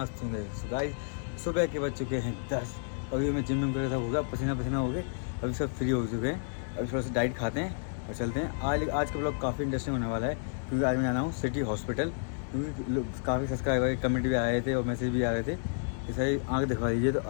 होंगे। तो गाइस सुबह के बज चुके हैं 10। अभी मैं जिम करके सब हो गया, पसीना पसीना हो गए, अभी सब फ्री हो चुके हैं। अभी थोड़ा सा डाइट खाते हैं और चलते हैं। आज का ब्लॉग काफ़ी इंटरेस्टिंग होने वाला है, क्योंकि आज मैं जाना हूँ सिटी हॉस्पिटल। क्योंकि काफ़ी सब्सक्राइबर कमेंट भी आए थे और मैसेज भी आ रहे थे कि सही आँख दिखवा दीजिए। तो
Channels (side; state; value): right; silent; 57 dB below the other